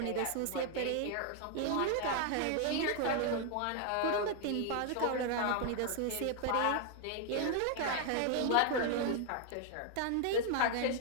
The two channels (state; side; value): different; both; correlation 0.00